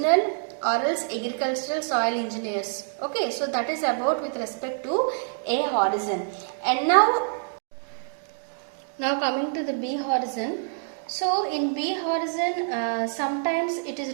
or else agricultural soil engineers. Okay, so that is about with respect to A horizon. And now coming to the B horizon. So in B horizon, sometimes it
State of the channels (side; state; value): left; silent; digital silence